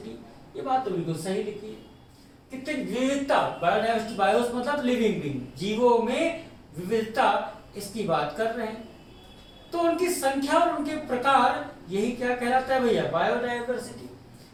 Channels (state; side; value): identical; both; correlation 1.00